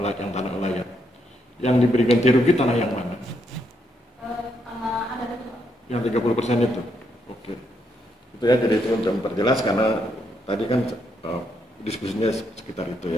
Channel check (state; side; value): normal; both; correlation 0.77